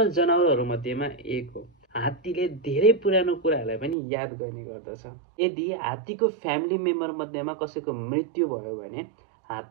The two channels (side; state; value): left; drops out; at 4.0 s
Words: जनावरहरु मध्येमा एक हो। हात्तीले धेरै पुरानो कुराहरुलाई पनि याद गर्ने गर्दछ। यदि हात्तीको फ्यामिली मेम्बर मध्येमा कसैको मृत्यु भयो भने